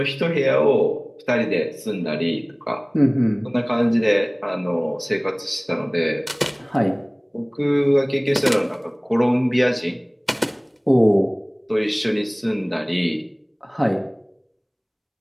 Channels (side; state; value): both; identical; correlation 1.00